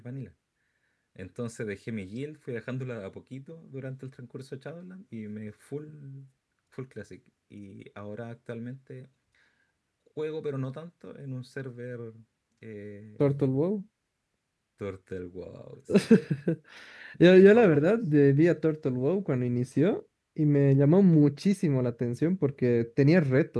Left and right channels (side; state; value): both; identical; correlation 1.00